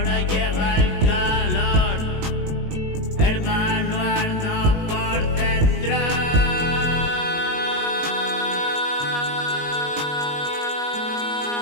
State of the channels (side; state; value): left; late; 18 ms